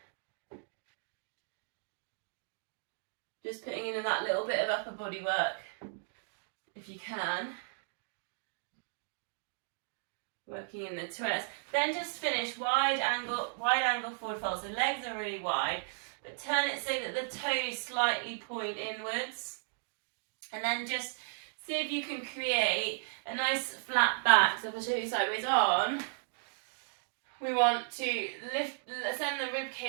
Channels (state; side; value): silent; left; digital silence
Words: Just putting in that little bit of upper body work, if you can. Working in the twist. Then just finish wide angle forward fold. So legs are really wide, but turn it so that the toes slightly point inwards. And then just see if you can create a nice flat back. So if I show you sideways on, we want to send the rib